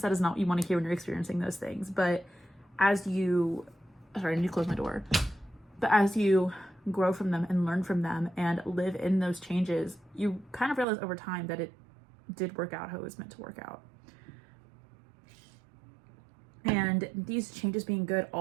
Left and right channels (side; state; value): left; drops out; at 10.9 s